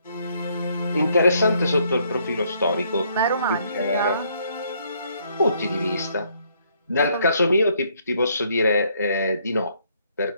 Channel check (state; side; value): inverted; both; correlation -0.69